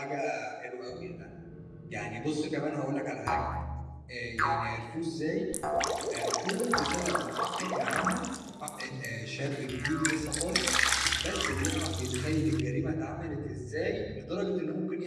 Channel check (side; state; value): both; identical; correlation 1.00